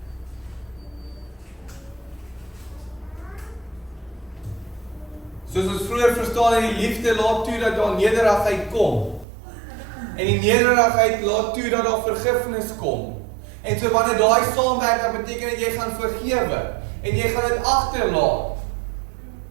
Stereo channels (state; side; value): drops out; left; at 9.2 s